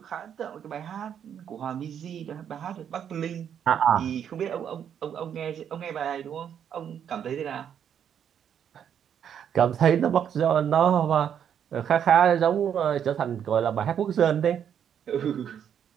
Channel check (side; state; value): left; quieter; 8.7 dB